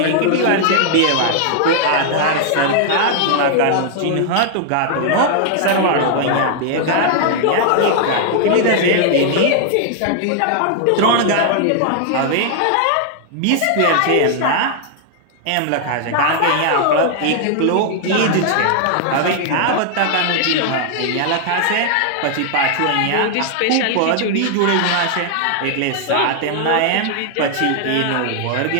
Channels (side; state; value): both; different; correlation 0.00